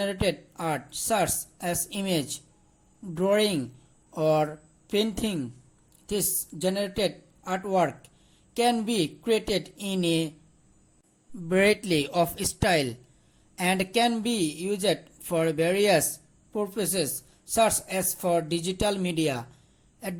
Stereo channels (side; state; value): both; identical; correlation 1.00